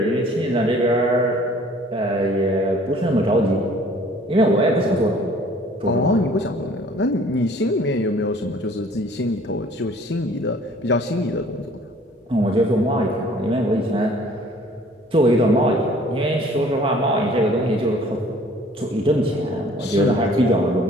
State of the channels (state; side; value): normal; both; correlation 0.54